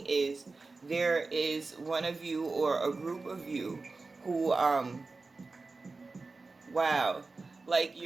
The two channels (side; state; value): left; quieter; 3.8 dB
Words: is there is one of you or a group of you who, wow, like